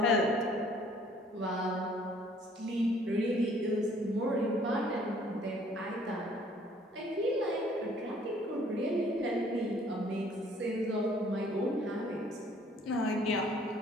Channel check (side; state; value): both; normal; correlation 0.58